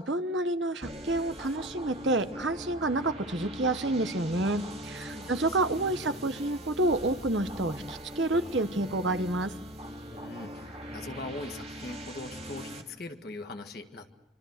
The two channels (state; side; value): normal; both; correlation 0.33